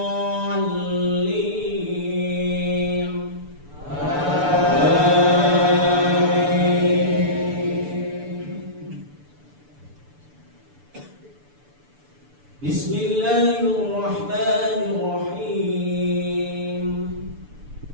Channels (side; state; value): left; late; 6.9 ms